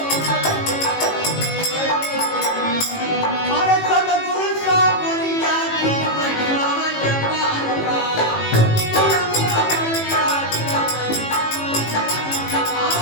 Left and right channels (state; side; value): late; right; 18 ms